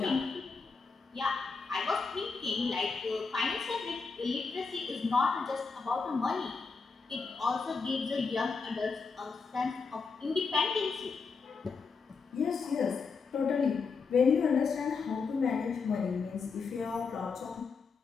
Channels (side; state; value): right; quieter; 4.9 dB